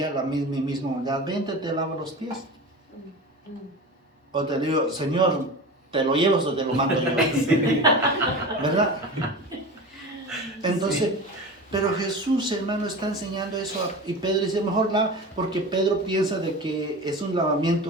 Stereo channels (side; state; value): both; normal; correlation 0.31